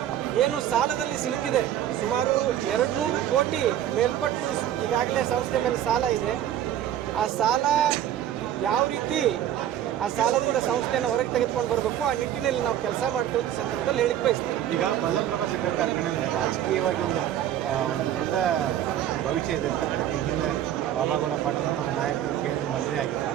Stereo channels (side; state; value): left; quieter; 11.2 dB